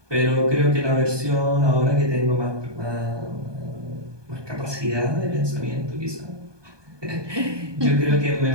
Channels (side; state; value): left; late; 1.2 ms